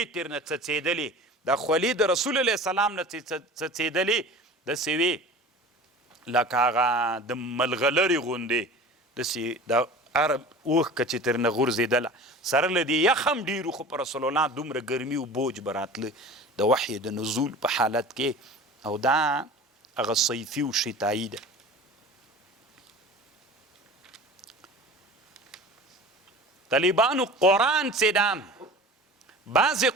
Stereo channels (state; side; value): normal; both; correlation 0.38